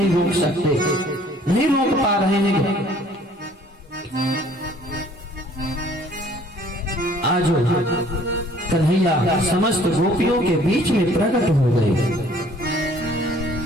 रोक सकते, नहीं रोक पा रहे हैं। आज कन्हैया समस्त गोपियों के बीच में प्रकट हो गए।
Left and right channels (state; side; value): normal; both; correlation 0.56